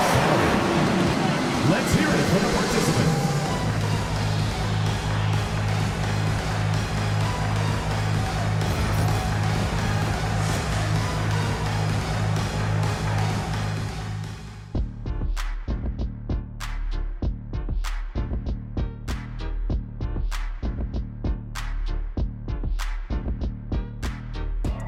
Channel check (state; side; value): identical; both; correlation 1.00